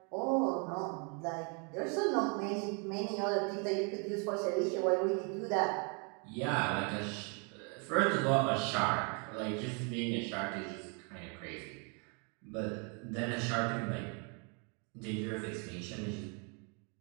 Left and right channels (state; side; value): quieter; left; 36.1 dB